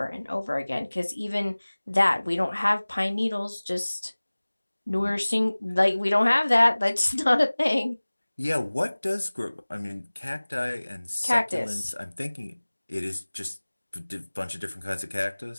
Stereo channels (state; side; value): inverted; both; correlation -1.00